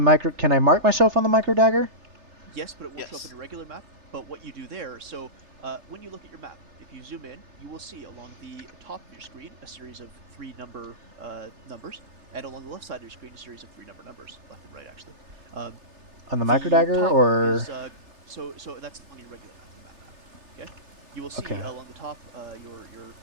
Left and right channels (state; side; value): late; left; 3.3 ms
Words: can I mark myself on the microdagger? Yes, but it will show up in a regular map. But what you do there, so when you look at your map, if you zoom in, you will see along the top of your screen a series of 3 numbers, and along the left side of your screen a series of 3 numbers, left and right actually. On the microdagger, or? So that's on your regular map. Okay. You will see along the top